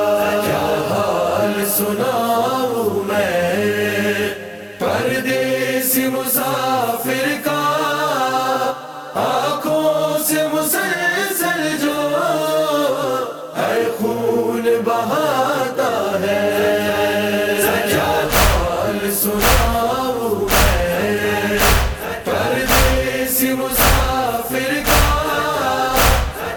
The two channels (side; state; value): both; identical; correlation 1.00